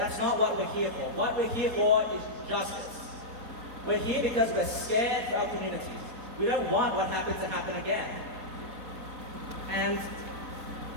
not what we're here for. What we're here for is justice. We're here because we're scared for our communities. We don't want what happened to happen again. And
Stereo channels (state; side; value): late; left; 4.2 ms